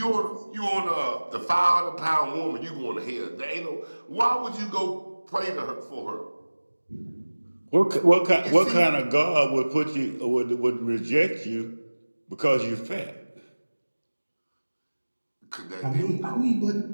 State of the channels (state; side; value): inverted; both; correlation -1.00